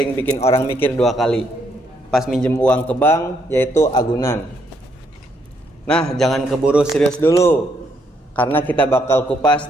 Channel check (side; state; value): both; normal; correlation 0.73